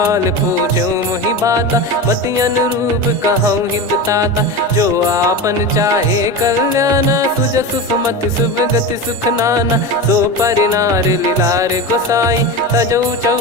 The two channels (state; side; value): normal; both; correlation 0.23